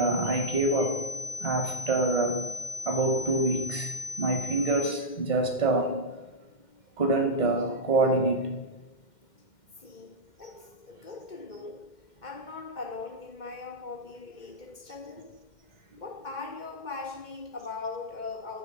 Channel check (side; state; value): right; late; 2.1 ms